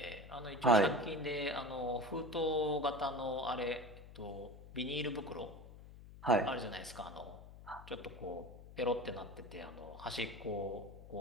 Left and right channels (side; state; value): left; noise; hum, 16 dB below the sound